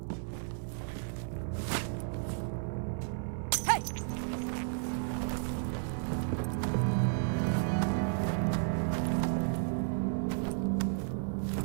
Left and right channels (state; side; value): silent; left; digital silence